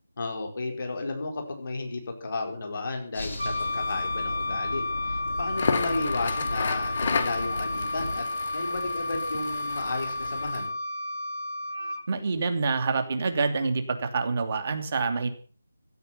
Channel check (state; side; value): inverted; both; correlation -0.85